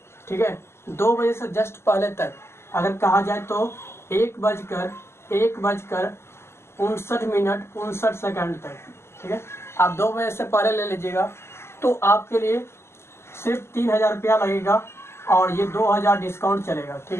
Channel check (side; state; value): right; late; 0.12 ms